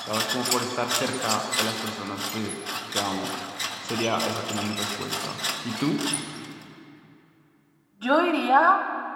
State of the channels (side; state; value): both; identical; correlation 1.00